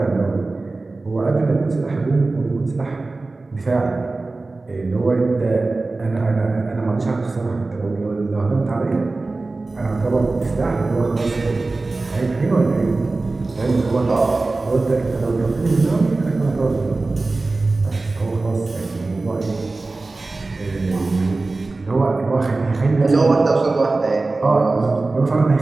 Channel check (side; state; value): left; quieter; 3.4 dB